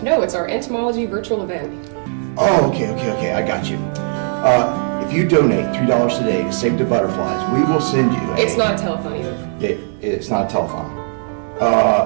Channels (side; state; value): left; silent; digital silence